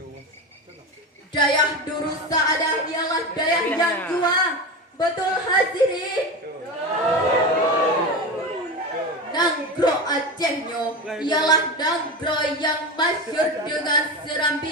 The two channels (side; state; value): both; normal; correlation 0.23